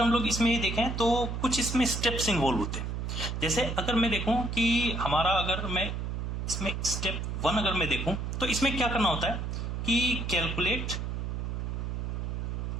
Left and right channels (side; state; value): right; noise; hum, 3 dB below the sound